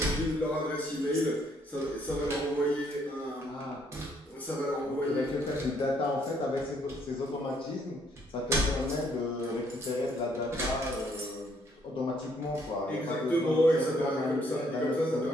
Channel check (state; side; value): normal; both; correlation 0.68